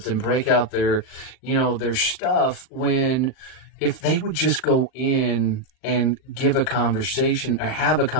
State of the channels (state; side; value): late; right; 39 ms